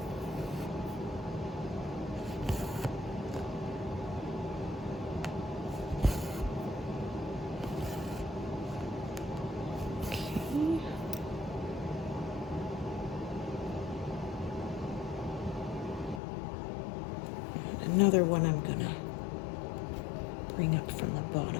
Another one I'm gonna bring up from the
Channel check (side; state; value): right; drops out; at 16.2 s